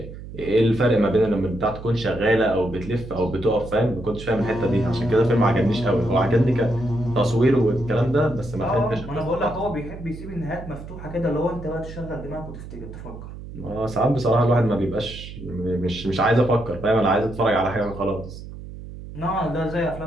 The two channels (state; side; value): noise; right; hum, 13 dB below the sound